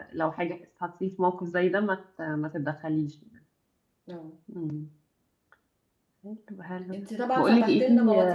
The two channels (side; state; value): both; identical; correlation 1.00